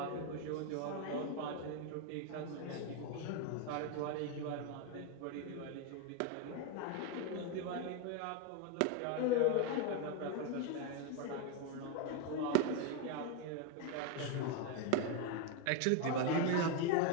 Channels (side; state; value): both; different; correlation 0.02